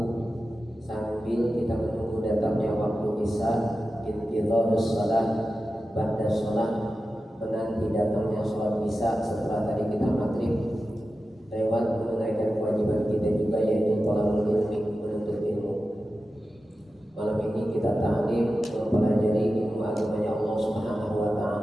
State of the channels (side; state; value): both; normal; correlation 0.93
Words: sambil kita menunggu datangnya waktu isya, intidharus shalah ba'da shalah, menanti datangnya sholat isya setelah tadi kita maghrib, lewat menunaikan kewajiban kita juga, yaitu thalabul ilmi, menuntut ilmu. Malam ini kita ta'lim mempelajari ilmu agamanya Allah Subhanahu wa